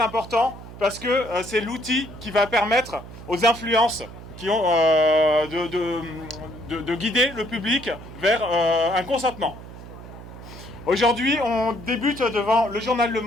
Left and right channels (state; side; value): noise; right; hum, 15 dB below the sound